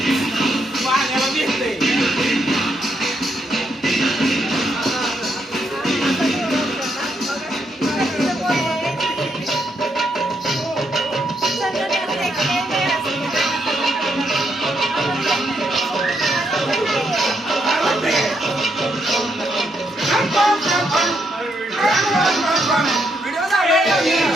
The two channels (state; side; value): normal; both; correlation 0.77